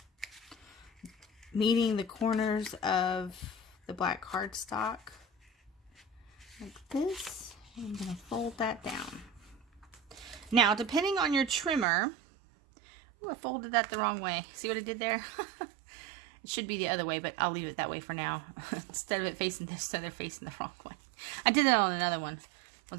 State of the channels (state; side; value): drops out; left; at 11.9 s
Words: meeting the corners of the black cardstock like this. I'm going to fold that down. Now, depending on your trimmer, ooh, I folded that the wrong way. See what I did there? It should be the other way, but I'll leave it that way for now. Instead of it facing this, so they're facing the wrong way. I did that on another one.